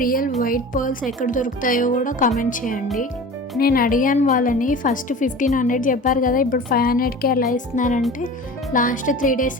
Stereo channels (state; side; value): normal; both; correlation 0.37